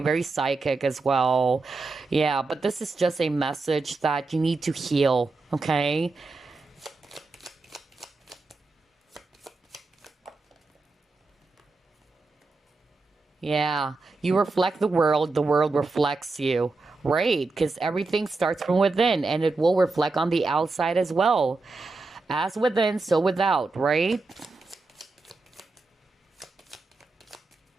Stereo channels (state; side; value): quieter; left; 3.7 dB